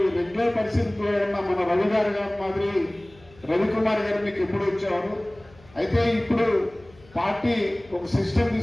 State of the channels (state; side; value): noise; left; hum, 26 dB below the sound